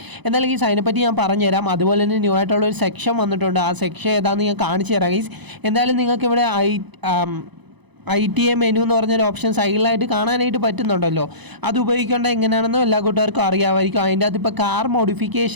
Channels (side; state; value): left; late; 1.0 ms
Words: എന്നാലും ഗീസ് അതിനെപ്പറ്റി ഞാൻ പറഞ്ഞുതരാം. അതുപോലെ തന്നെ ന്യൂ ആയിട്ടുള്ള ഒരു സെക്ഷൻ വന്നിട്ടുണ്ട്. ആ സെക്ഷൻ ഏതാണെന്ന് ഞാൻ കാണിച്ചു തരാം ഗൈസ്. എന്തായാലും നിങ്ങൾക്ക് ഇവിടെ ITA മെനു എന്ന് പറഞ്ഞൊരു ഓപ്ഷൻ സൈഡിലായിട്ട് കാണാനായിട്ട് പറ്റുന്നുണ്ടല്ലോ. അത് ഉപയോഗിക്കേണ്ട എങ്ങനെയാണെന്നും എല്ലാ കൂട്ടുകാർക്കും അറിയാമായിരിക്കും. അതിൻ്റെ അകത്ത് ഇപ്പോൾ കാർ